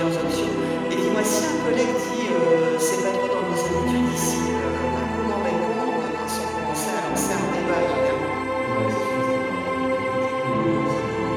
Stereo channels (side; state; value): both; identical; correlation 1.00